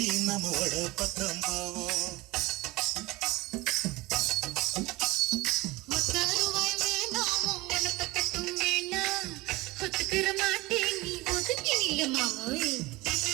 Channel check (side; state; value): left; quieter; 21.2 dB